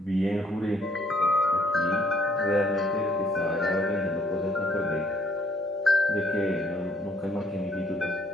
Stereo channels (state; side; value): normal; both; correlation 0.65